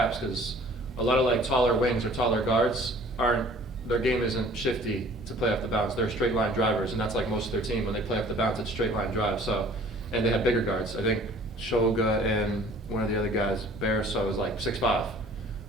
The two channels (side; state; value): both; normal; correlation 0.51